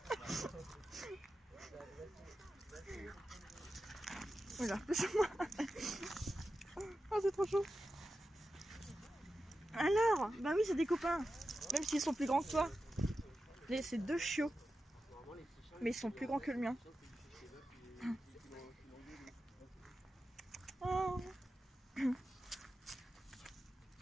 Voilà, moi. Oh, c'est trop chaud. Alors, bah oui, c'est des copains. Même s'ils sont plus grands que toi. C'est deux chiots. Mais ils sont plus grands que le mien. Oh.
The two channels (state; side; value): normal; both; correlation 0.91